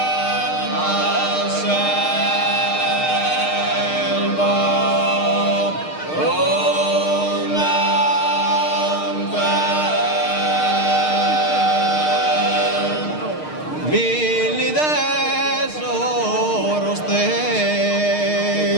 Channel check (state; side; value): late; right; 6.5 ms